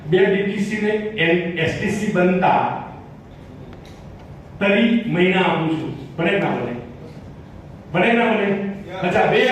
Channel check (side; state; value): both; identical; correlation 1.00